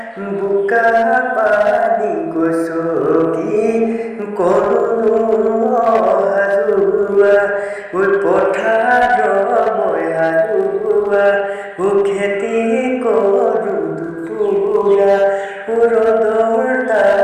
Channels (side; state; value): both; identical; correlation 1.00